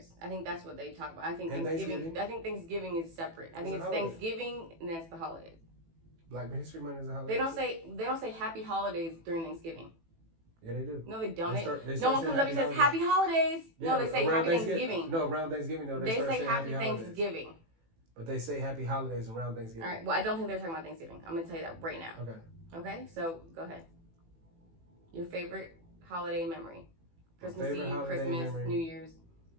I think that's what they talk about. I think Thanksgiving is separate. I think it's Thanksgiving and that's the holidays. Black History Month is a holiday. They don't say Happy Holidays during Thanksgiving. Yeah, they do. No, they don't. They no one comes up and says Happy Holidays. Yeah, no, they say Happy Thanksgiving. No, around Thanksgiving, though. They say Happy Thanksgiving. Holidays. But they say Happy Holidays around Thanksgiving. All right. Well, I don't think they're talking about Thanksgiving. I'm going to tell you that right now. Okay. Okay? So, go ahead. Your favorite holiday memory. Christmas Eve, Christmas, New Year's.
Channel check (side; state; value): left; late; 18 ms